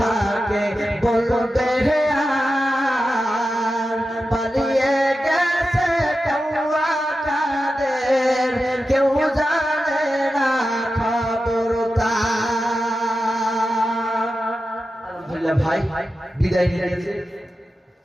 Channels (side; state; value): both; normal; correlation 0.92